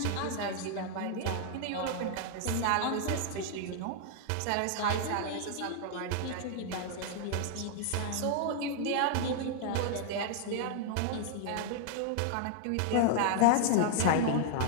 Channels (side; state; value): both; different; correlation 0.00